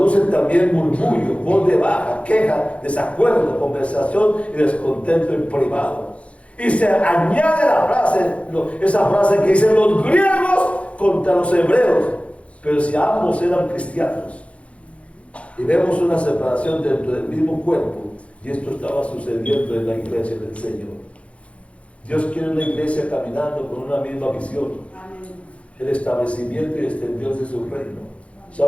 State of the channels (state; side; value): late; right; 0.062 ms